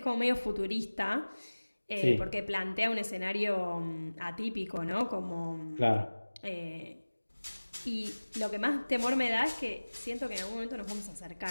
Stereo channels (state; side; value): inverted; both; correlation -1.00